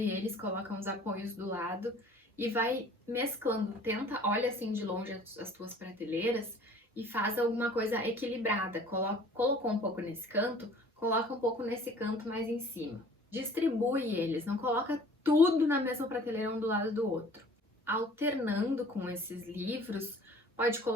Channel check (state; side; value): normal; both; correlation 0.50